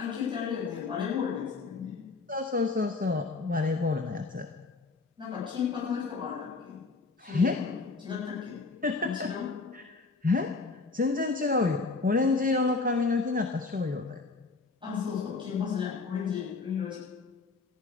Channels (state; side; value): quieter; right; 4.1 dB